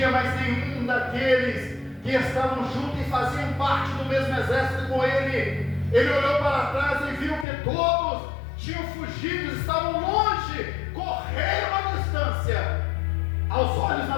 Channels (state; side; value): drops out; right; at 7.5 s